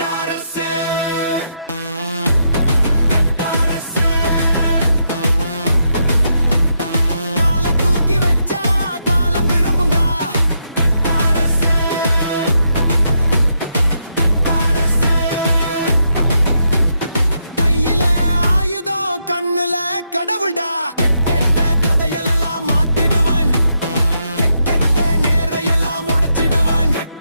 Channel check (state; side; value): inverted; both; correlation -0.80